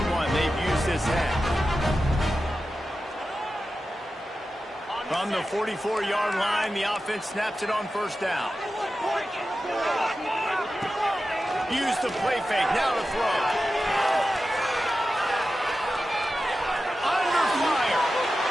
one they've used this half. From the 44-yard line, the offense snaps it on first down. Use the play fake. Now to throw. Under fire.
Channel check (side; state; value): both; normal; correlation 0.93